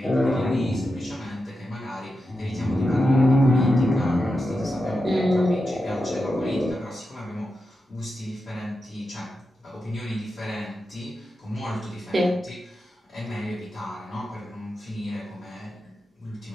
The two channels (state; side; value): normal; both; correlation 0.89